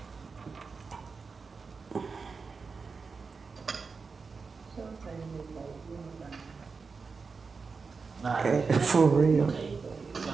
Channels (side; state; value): left; quieter; 4.8 dB